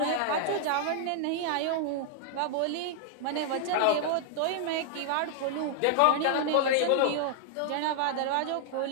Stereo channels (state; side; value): different; both; correlation -0.01